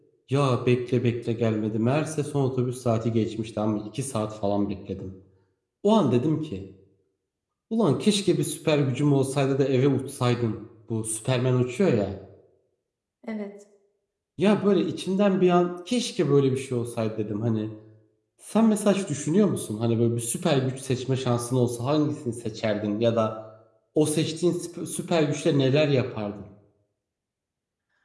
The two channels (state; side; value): identical; both; correlation 1.00